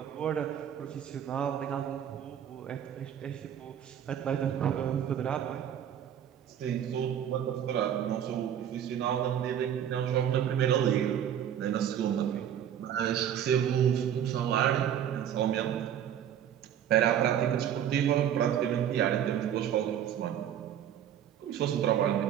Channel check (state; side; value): quieter; left; 9.8 dB